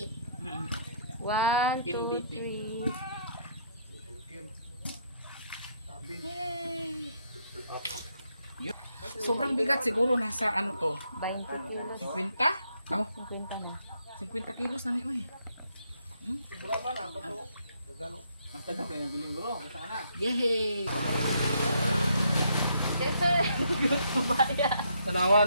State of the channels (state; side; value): inverted; both; correlation -0.70